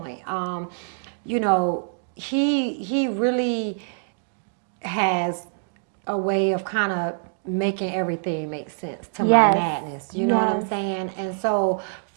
You know, he really has a way of kind of making everything make sense to my madness. You know what I'm saying? And so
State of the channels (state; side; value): silent; left; digital silence